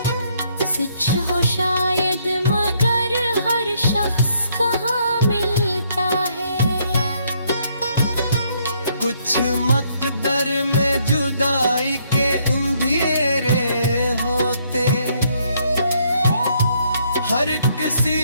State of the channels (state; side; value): inverted; both; correlation -0.70